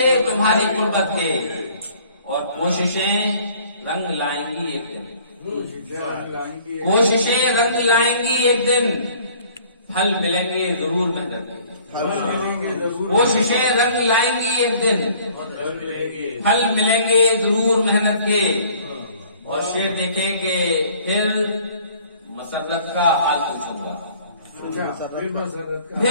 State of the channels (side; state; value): both; inverted; correlation -0.55